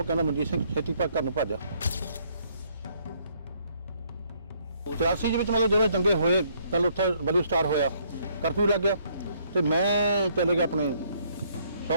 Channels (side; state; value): both; inverted; correlation -0.67